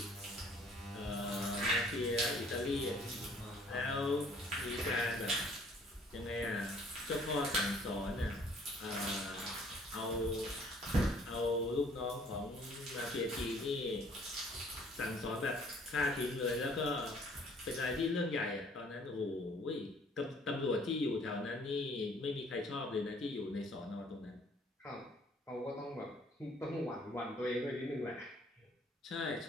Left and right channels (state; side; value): normal; both; correlation 0.58